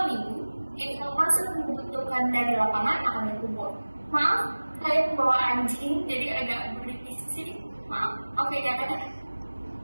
minggu, informasi yang dibutuhkan dari lapangan akan dikumpul. Maaf, saya membawa anjing, jadi agak berisik di sini. Maaf, oke, jangan.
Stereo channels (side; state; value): both; inverted; correlation -1.00